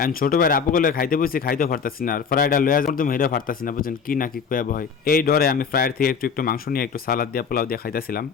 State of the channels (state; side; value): quieter; right; 6.3 dB